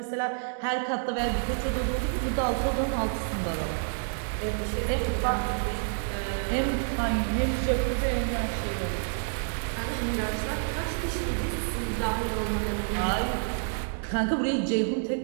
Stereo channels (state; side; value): silent; left; digital silence